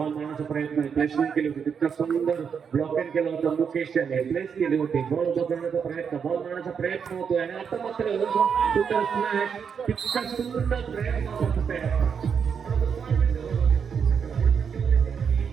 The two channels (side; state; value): left; quieter; 6.8 dB